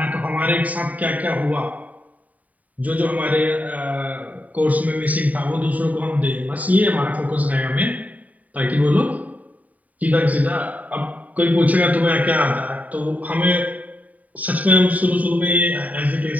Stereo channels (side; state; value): left; late; 0.072 ms